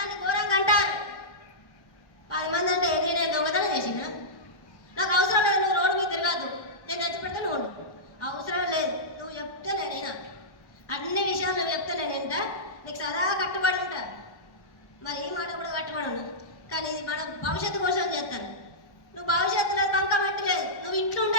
ఘోరంగా అంటారు. 10 మంది అంటే ఏది? నేను దొంగతనం చేసిన? నాకు అవసరం లేదు. నువ్వు రోడ్డు మీద తిరగద్దు. నేను తెచ్చి పెడితే నువ్వు అవసరం లేదు. నువ్వు చెప్తే నేనైనా అన్ని విషయాలు నువ్వు చెప్తే నేనేంట నీకు సదా కట్టుబడి ఉంటా. మరి ఈ మాట కూడా కట్టుబడి ఉన్నా. కానీ ఇది మన భవిష్యత్తు కోసం చేస్తాను. నువ్వు భవిష్యత్తులో బంక పెట్టలేదు. నువ్వు ఇంట్లో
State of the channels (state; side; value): late; right; 1.2 ms